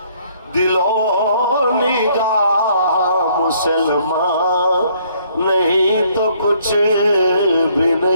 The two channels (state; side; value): inverted; both; correlation -0.64